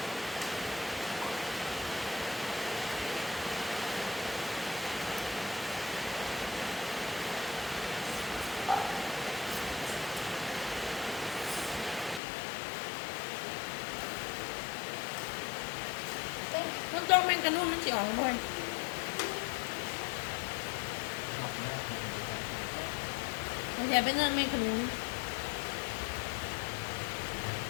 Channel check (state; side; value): drops out; right; at 12.2 s